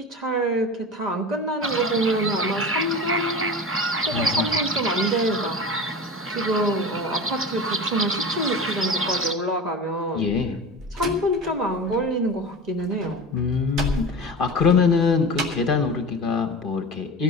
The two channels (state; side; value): normal; both; correlation 0.31